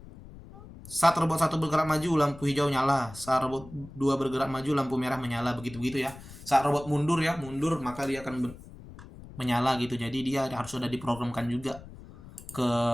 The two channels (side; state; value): left; noise; rumble, 17 dB below the sound